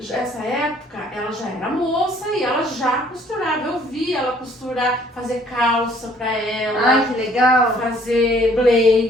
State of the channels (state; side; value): normal; both; correlation 0.60